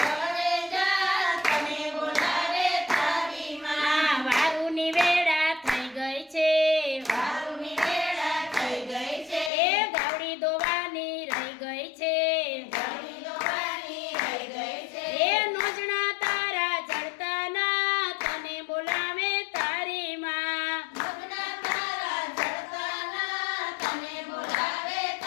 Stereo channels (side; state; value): right; drops out; at 9.5 s